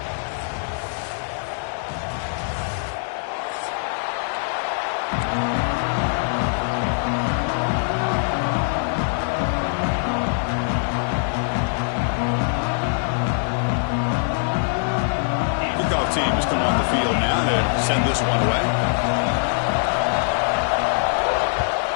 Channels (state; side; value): silent; right; digital silence